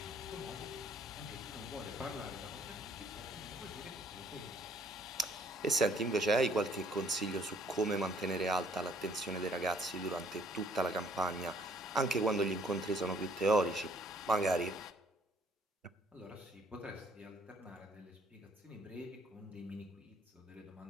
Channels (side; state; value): both; normal; correlation 0.61